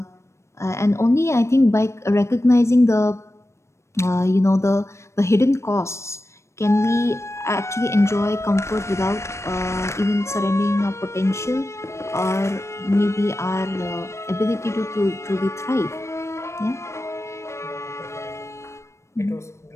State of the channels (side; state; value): right; late; 0.13 ms